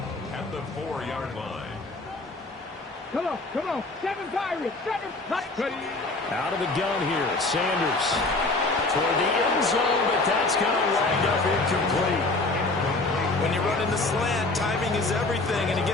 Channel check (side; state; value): right; quieter; 3.2 dB